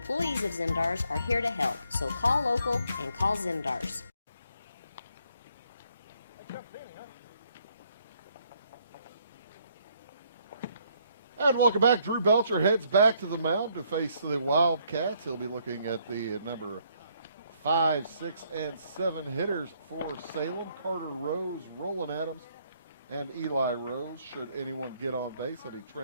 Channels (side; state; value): both; inverted; correlation -0.69